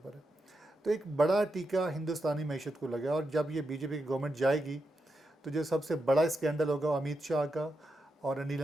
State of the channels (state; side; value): normal; both; correlation 0.86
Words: है। तो एक बड़ा टीका हिंदुस्तानी मैशत को लगा, और जब ये बीजेपी की गवर्नमेंट जाएगी तो जो सबसे बड़ा स्कैंडल होगा वो अमित शाह का और अनिल